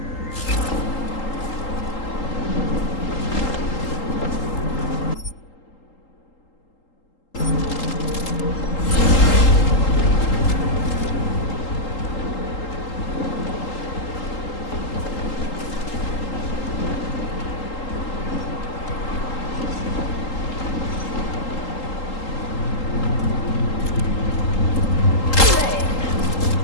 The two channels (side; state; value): right; late; 3.8 ms